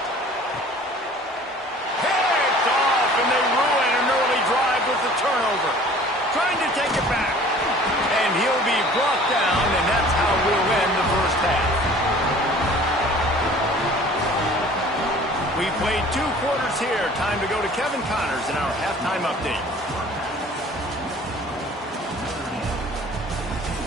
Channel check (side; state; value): both; normal; correlation 0.49